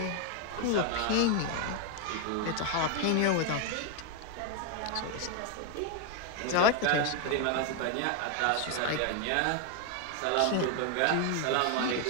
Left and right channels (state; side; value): different; both; correlation 0.01